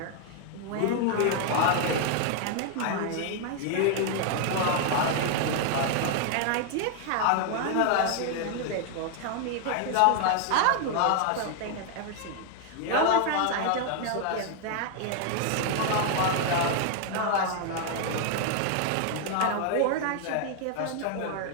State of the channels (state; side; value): different; both; correlation 0.00